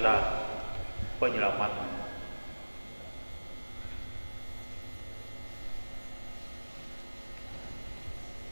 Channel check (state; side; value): inverted; both; correlation -1.00